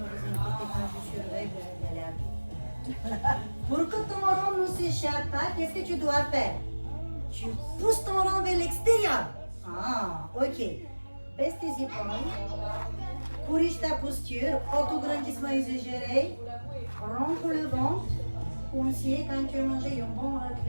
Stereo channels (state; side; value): inverted; both; correlation -1.00